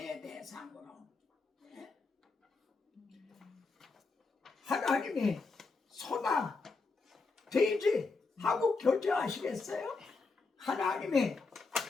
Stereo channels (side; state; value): right; quieter; 4.1 dB